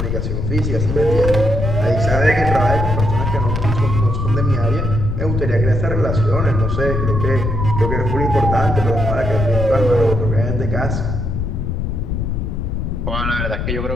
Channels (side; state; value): left; noise; rumble, 2 dB below the sound